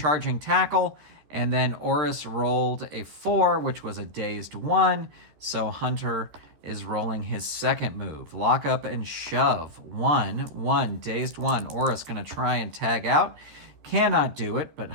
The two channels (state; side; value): late; left; 13 ms